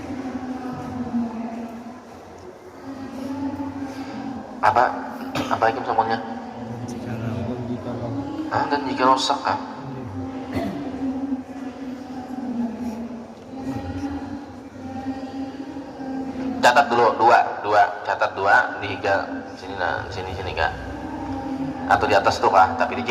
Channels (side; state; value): both; identical; correlation 1.00